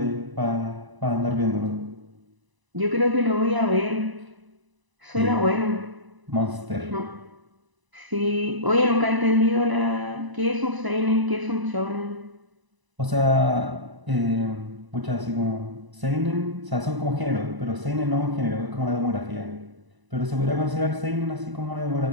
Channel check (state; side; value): late; left; 1.0 ms